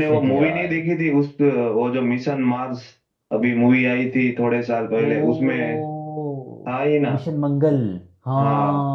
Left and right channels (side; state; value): both; identical; correlation 1.00